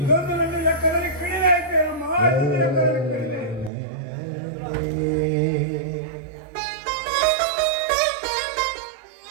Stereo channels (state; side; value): drops out; left; at 3.7 s